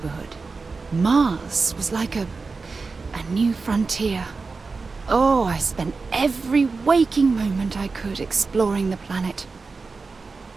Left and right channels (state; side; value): quieter; left; 4.2 dB